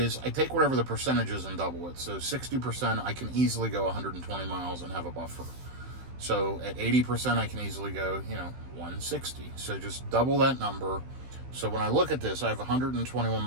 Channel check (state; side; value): late; left; 16 ms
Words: I take whatever the percentage is and double it. So 60%, I can easily go 120 miles and have a buffer. So at 80%, I can easily go, 160. So just double that number. So when I look at this, I have 121